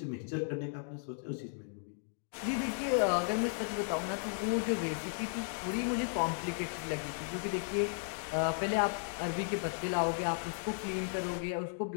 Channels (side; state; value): right; silent; digital silence